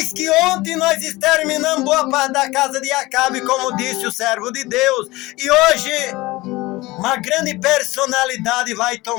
que ontem nós exterminamos boa parte da casa de Acabe, como disse o servo de Deus. E hoje uma grande personalidade vai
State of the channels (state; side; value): quieter; right; 20.4 dB